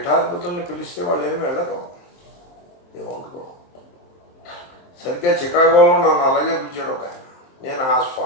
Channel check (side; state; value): right; late; 23 ms